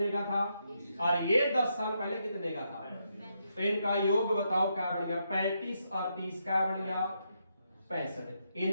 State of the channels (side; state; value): both; inverted; correlation -0.80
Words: का था, और ये 10 साल पहले कितने का था। तो इनका योग बताओ क्या बन गया, 35 और 30 क्या बन गया, 65।